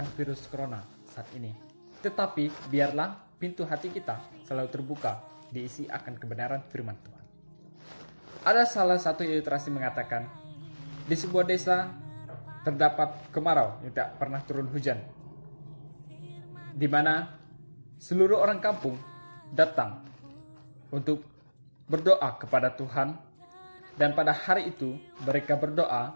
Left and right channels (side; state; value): both; inverted; correlation -1.00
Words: virus corona saat ini. Tetapi biarlah pintu hati kita selalu terbuka, diisi akan kebenaran firman Tuhan. Ada salah satu ilustrasi mengatakan, di sebuah desa terdapat kemarau yang tak pernah turun hujan, di mana seluruh orang kampung datang untuk berdoa kepada Tuhan. Dan pada hari itu mereka